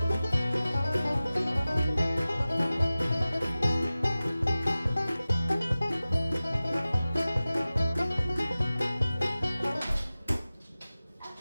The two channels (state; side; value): inverted; both; correlation -0.96